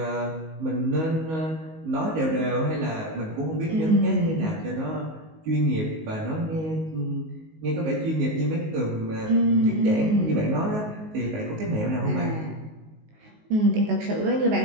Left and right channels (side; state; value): left; late; 19 ms